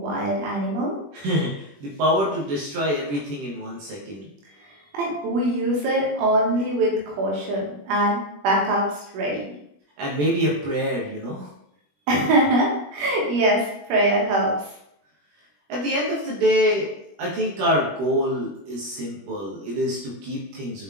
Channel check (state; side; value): late; left; 21 ms